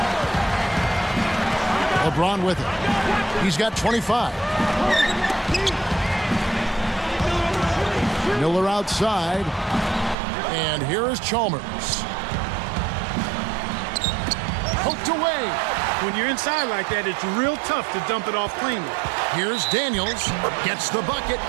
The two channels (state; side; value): drops out; left; at 10.2 s